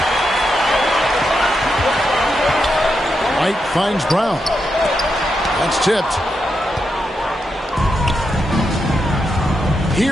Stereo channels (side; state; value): both; normal; correlation 0.84